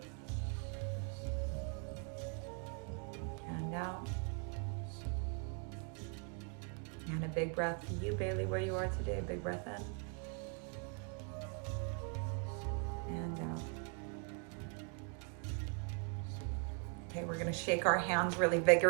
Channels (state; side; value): quieter; left; 37.2 dB